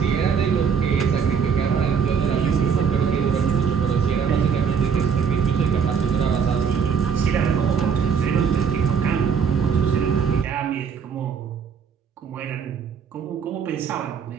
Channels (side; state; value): left; quieter; 6.6 dB